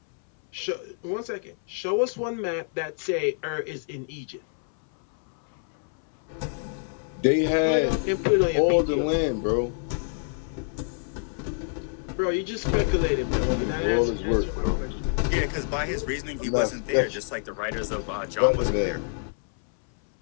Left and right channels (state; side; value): silent; right; 60 dB below the other